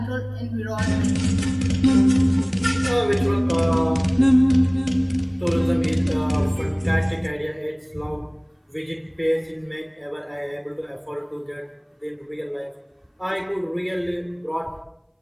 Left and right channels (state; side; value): identical; both; correlation 1.00